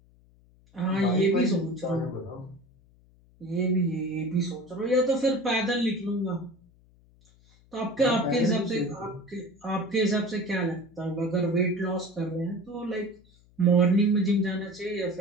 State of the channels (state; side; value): noise; left; hum, 29 dB below the sound